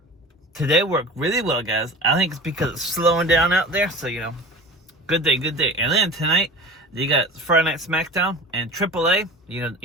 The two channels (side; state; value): both; normal; correlation 0.36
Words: today worked really well, guys. I think it's because it's slowing down out there, so you know, good day. And then tonight, you got Friday Night SmackDown and AAA. You